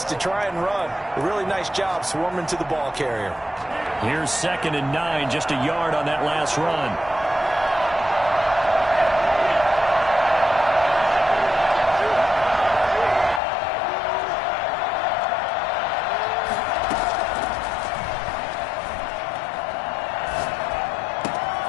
to try and run. A really nice job swarming to the ball carrier. Here's 2nd and 9, just a yard on that last run.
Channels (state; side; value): drops out; right; at 13.4 s